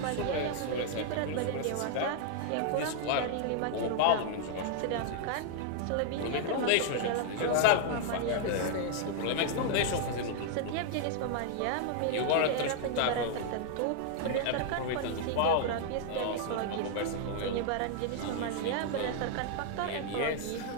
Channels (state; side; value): different; both; correlation 0.00